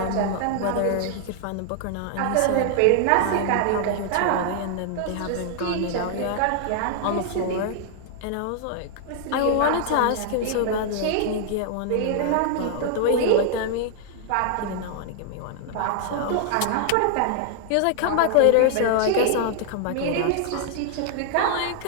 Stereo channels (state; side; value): different; both; correlation 0.00